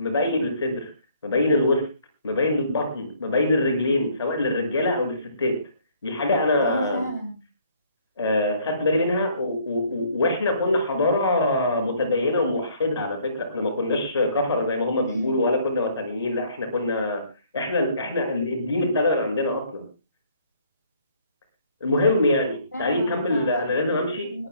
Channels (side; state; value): both; inverted; correlation -0.62